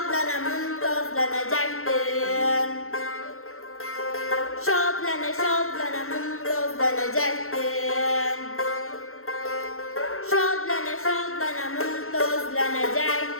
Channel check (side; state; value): right; late; 0.62 ms